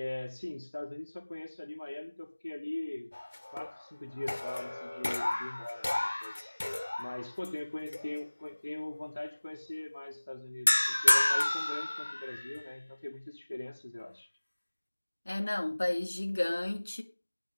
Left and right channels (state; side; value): inverted; both; correlation -1.00